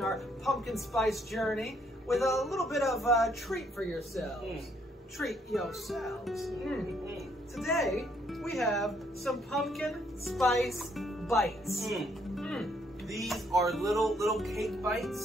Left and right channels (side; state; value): both; normal; correlation 0.69